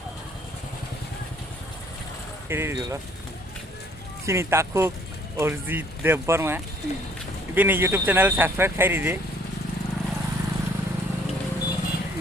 kiri dulu sini takuk Orzi Deborma ini YouTube channel subscribe kiri deh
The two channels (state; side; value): normal; both; correlation 0.61